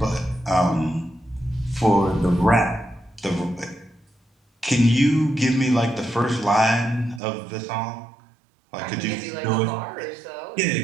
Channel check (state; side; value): drops out; left; at 7.2 s